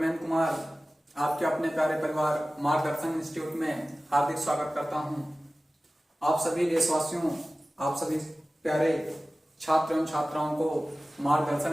कुमार आपके अपने प्यारे परिवार मार्गदर्शन इंस्टीट्यूट में हार्दिक स्वागत करता हूं। आप सभी देशवासियों, आप सभी प्यारे छात्र एवं छात्राओं को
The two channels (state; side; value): normal; both; correlation 0.97